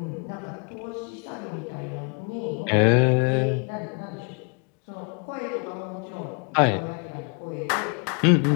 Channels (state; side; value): quieter; right; 37.2 dB